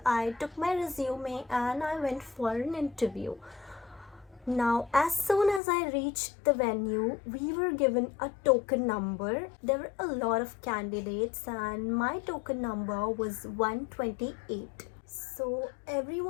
I took my resume and I went for an interview. Now, as soon as I reached the venue, we were given a token number. There were a lot of candidates and my token number was 128. So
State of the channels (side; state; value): right; drops out; at 5.6 s